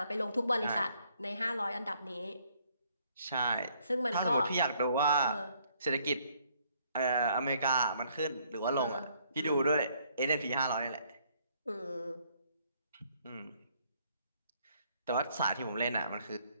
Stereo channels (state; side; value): inverted; both; correlation -0.66